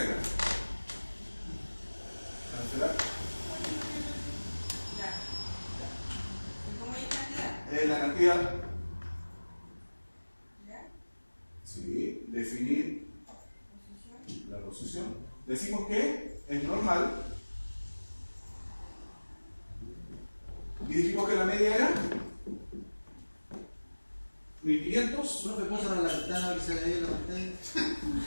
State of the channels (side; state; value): both; inverted; correlation -1.00